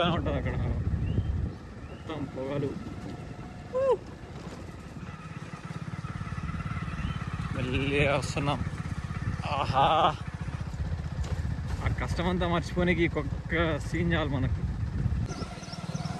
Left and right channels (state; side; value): identical; both; correlation 1.00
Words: ఉంటుంది అక్కడ మొత్తం పొగలు. వెళ్ళి వస్తున్నాం. ఆహా, ఆ కష్టమంతా మర్చిపోనికి ఒక్క సీన్ చాలు మనకు.